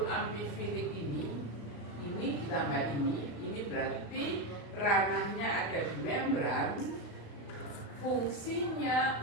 amfifilik ini ditambah ini berarti ranahnya ada di membran.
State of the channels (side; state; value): right; late; 35 ms